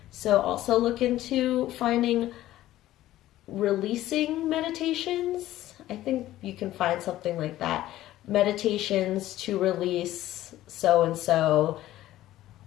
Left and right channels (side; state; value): right; quieter; 14.6 dB